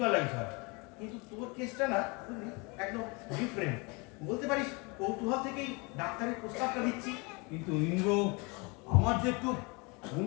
হয়, কিন্তু তোর কেসটা না বুঝলি একদম ডিফারেন্ট। বলতে পারিস কৌতূহল থেকেই ডাক্তারের প্রস্তাবটা দিচ্ছি। কিন্তু ইন্দ্র আমার যে একটু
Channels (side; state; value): right; quieter; 28.8 dB